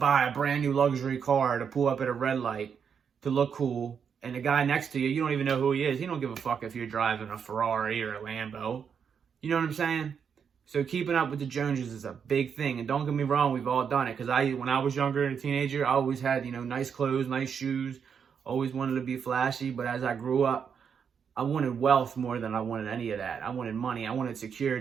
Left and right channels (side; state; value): left; quieter; 7.0 dB